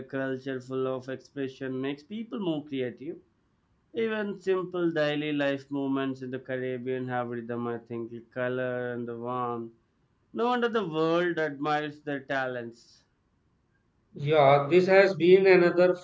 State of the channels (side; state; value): both; identical; correlation 1.00